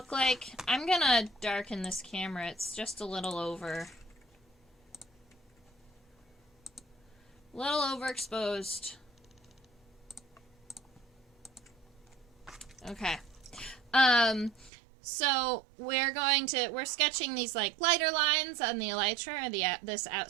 like. I'm going to darken this camera. It's just a little overexposed. Okay. So we're sketching these like lighter lines on the elytra, or this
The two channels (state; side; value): drops out; left; at 14.7 s